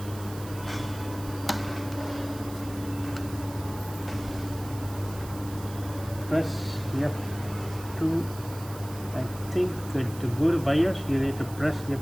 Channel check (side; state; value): right; noise; hiss, 16 dB below the sound